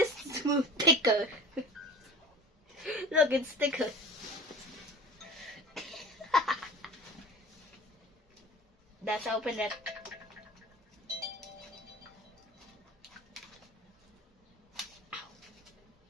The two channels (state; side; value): normal; both; correlation 0.38